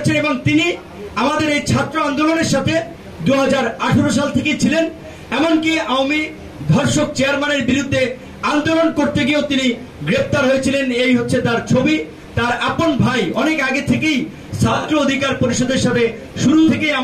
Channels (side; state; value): both; identical; correlation 1.00